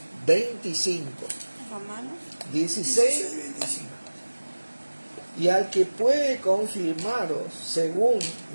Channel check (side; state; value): both; inverted; correlation -1.00